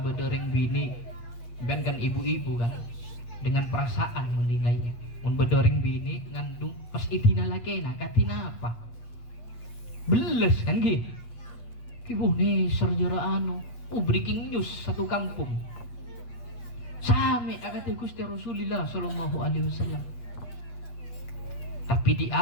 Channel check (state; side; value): late; right; 8.3 ms